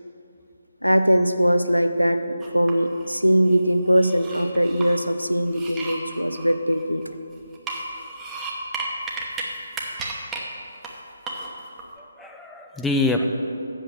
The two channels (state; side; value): inverted; both; correlation -0.86